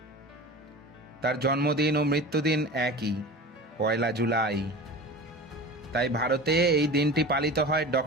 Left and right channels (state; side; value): normal; both; correlation 0.35